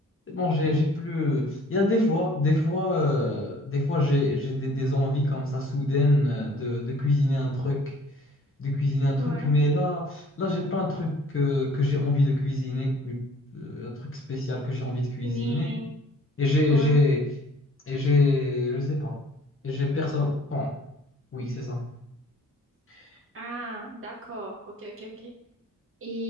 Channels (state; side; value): normal; both; correlation 0.55